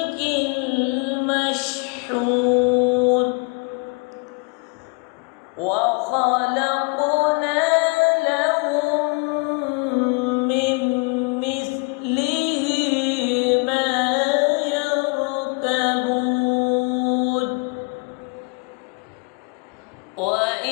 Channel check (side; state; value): right; quieter; 32.7 dB